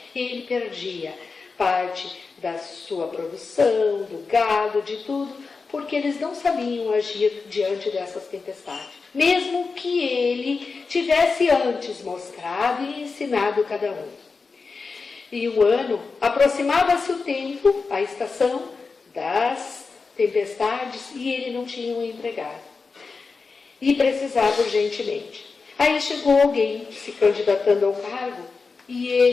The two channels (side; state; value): right; quieter; 4.5 dB